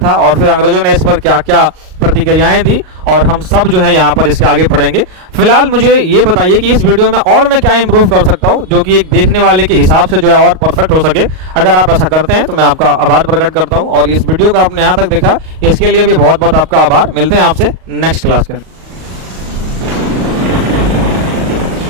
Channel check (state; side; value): late; left; 38 ms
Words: और फिर अंग्रेजों ने इस पर क्या क्या प्रतिक्रियाएं दी, और हम सब जो है यहाँ पर इसके आगे पढ़ेंगे। फिलहाल मुझे ये बताइए कि इस वीडियो में और मैं क्या इंप्रूव कर सकता हूँ जो कि एक देखने वाले के हिसाब से जो है और परफेक्ट हो सके। अगर आप ऐसा करते हैं तो मैं आपका आभार प्रकट करता हूँ, और इस वीडियो को आपने यहाँ तक देखा इसके लिए भी बहुत बहुत आपका आभार। मिलते हैं आपसे नेक्स्ट क्लास के अंदर।